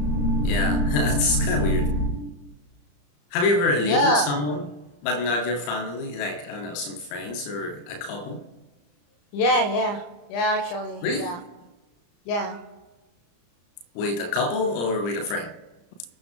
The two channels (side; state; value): right; late; 34 ms